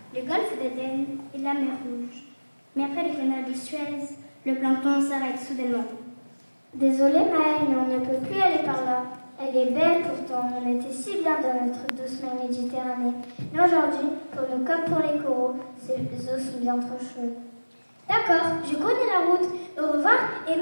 le golfe d'Aden et la mer Rouge. Mais après le canal de Suez, le plancton s'arrête soudainement. Désolée Maëlle, mais on ne peut plus aller par là. Elle est belle pourtant, on était si bien dans notre douce mer Méditerranée. Mais aujourd'hui, pour nous comme pour les coraux, ces eaux sont bien trop chaudes. D'accord, je connais la route. Au revoir et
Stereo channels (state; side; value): inverted; both; correlation -1.00